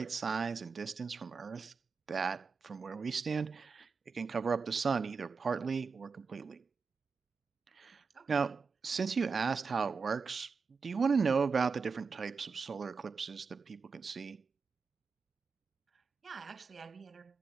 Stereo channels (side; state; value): left; quieter; 5.1 dB